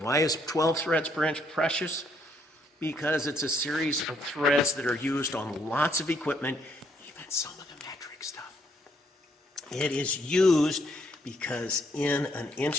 is 12 threads per inch precious? Because it's a series of threads that are used on lots of equipment, even some of the metric stuff. It is used because in an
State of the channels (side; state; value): both; normal; correlation 0.71